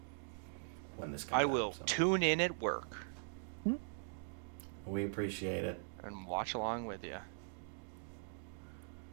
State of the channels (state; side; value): silent; left; digital silence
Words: when this comes I out, will so. tune in at work. We appreciate it. and watch along with you.